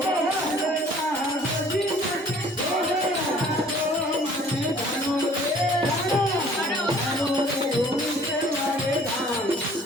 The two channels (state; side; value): normal; both; correlation 0.54